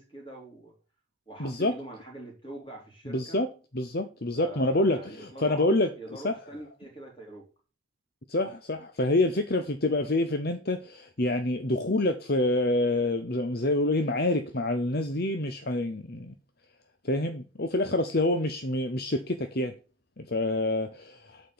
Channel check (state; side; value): normal; both; correlation 0.21